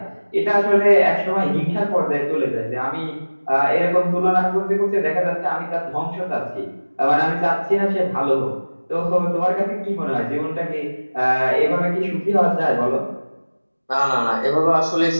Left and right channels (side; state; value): both; inverted; correlation -1.00